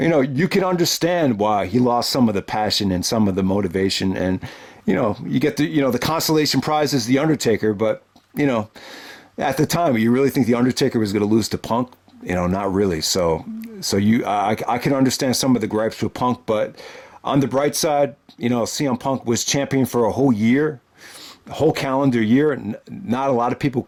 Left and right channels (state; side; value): identical; both; correlation 1.00